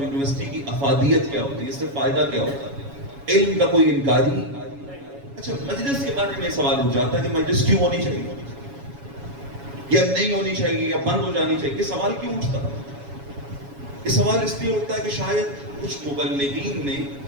یونیورسٹی کی افادیت کیا ہوتی ہے، اس سے فائدہ کیا ہوتا ہے. علم کا کوئی انکاری. اچھا مجلس کے بارے میں سوال اٹھ جاتا ہے کہ مجلس کیوں ہونی چاہیے یا نہیں ہونی چاہیے یا بند ہو جانی چاہیے. یہ سوال کیوں اٹھتا ہے؟ یہ سوال اس لیے اٹھتا ہے کہ شاید کچھ مبلغین نے،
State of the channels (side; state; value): left; late; 7.2 ms